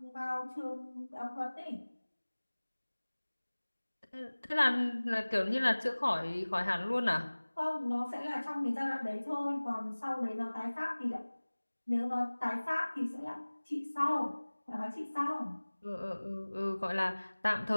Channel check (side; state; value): both; inverted; correlation -1.00